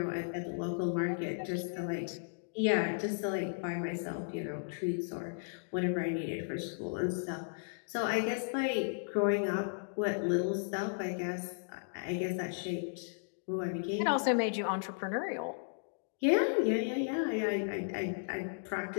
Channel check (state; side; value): silent; right; digital silence